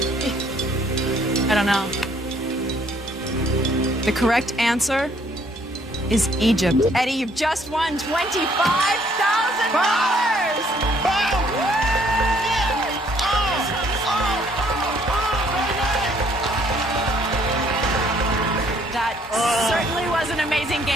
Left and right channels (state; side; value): normal; both; correlation 0.64